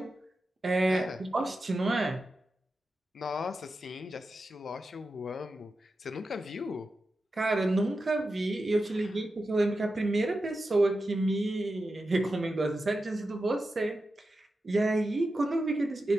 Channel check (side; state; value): both; normal; correlation 0.91